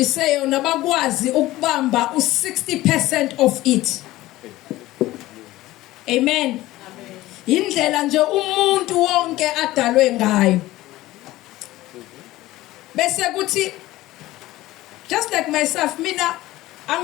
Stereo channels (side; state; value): right; quieter; 17.0 dB